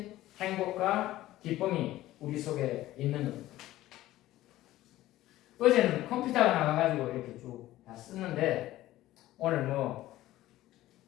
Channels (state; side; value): quieter; right; 15.5 dB